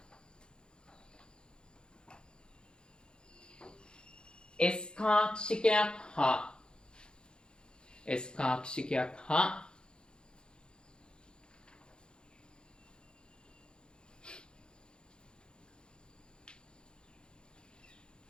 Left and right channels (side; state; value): right; late; 0.049 ms